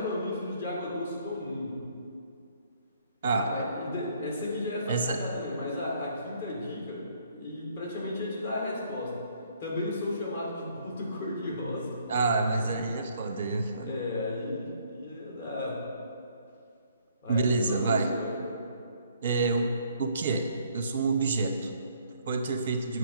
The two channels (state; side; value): inverted; both; correlation -0.65